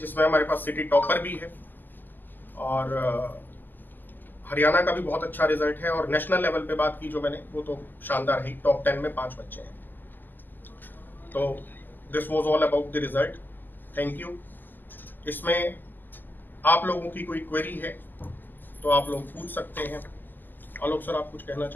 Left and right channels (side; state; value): right; late; 0.088 ms